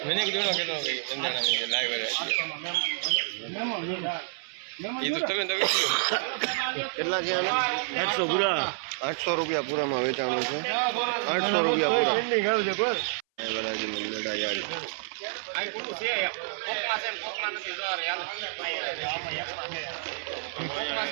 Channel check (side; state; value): left; silent; 59 dB below the other